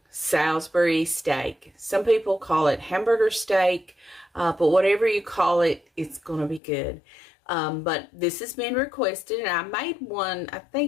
Salisbury steak. Some people call it hamburger steak, but whatever you call it, it's going to be good. But this has been requested, and I made one, I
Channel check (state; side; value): drops out; right; at 6.6 s